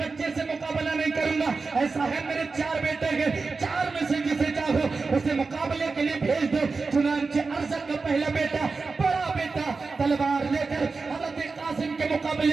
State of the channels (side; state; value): left; quieter; 4.3 dB